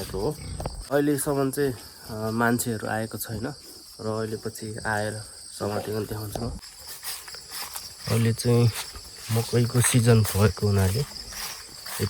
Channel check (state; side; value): identical; both; correlation 1.00